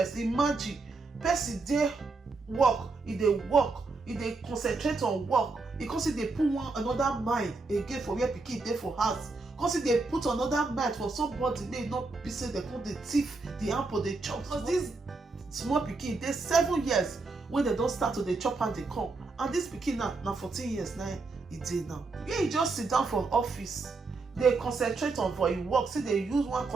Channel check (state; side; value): quieter; left; 3.8 dB